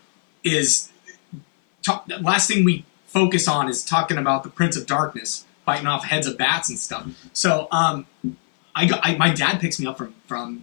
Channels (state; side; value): silent; right; 57 dB below the other